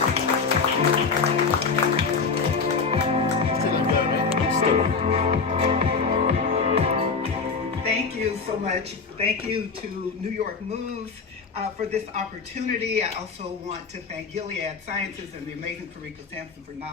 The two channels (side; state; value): right; quieter; 5.0 dB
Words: Thank you so much. Thank you to New York Moves for this opportunity. I also want to thank Gilead Sciences and the amazing Karika Sampson for